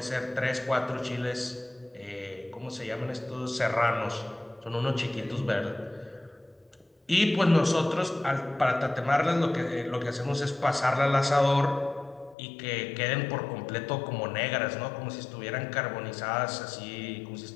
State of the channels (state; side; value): drops out; right; at 12.4 s